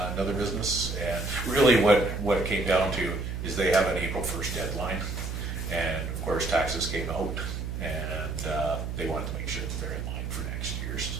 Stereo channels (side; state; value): right; noise; hum, 4 dB below the sound